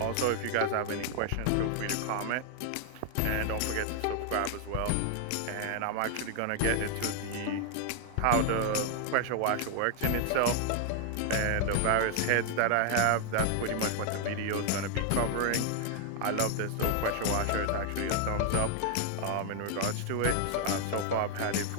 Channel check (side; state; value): both; different; correlation 0.00